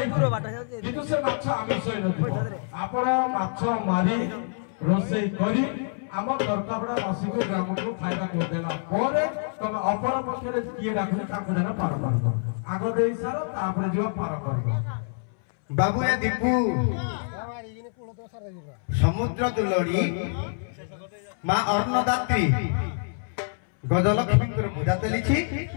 किंतु से माछ आमिष होई नथो आपण माछ मारी रोसे करी आम प्रकबड़ा वासी को ग्राम को खाइबा को देला परे तमे अपर पक्षरे किए राखु ताको जन पार करबो आगो देई सारो तापर जो पार करबो बाबू ए दीपू समुद्र दुलड़ी माँ अन्नदात्री गजलक्ष्मी पूजा चली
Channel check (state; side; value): silent; right; 61 dB below the other